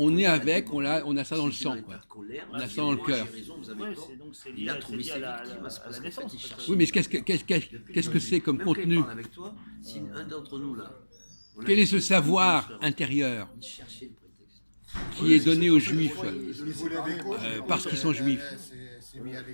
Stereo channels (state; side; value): inverted; both; correlation -1.00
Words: est avec, on a ça dans le sang, quoi. On a ça dans le cœur. Il a trouvé ses victimes. Oui, mais qu'est-ce que c'est comme contenu? Si un d'entre nous là. Quel est ce savoir intérieur? qui est donné aux Juifs parce qu'ils sont Juifs. Je